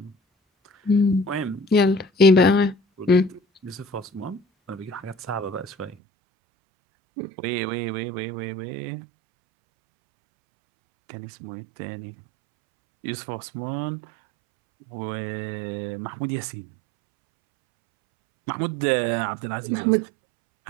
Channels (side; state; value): left; drops out; at 6.0 s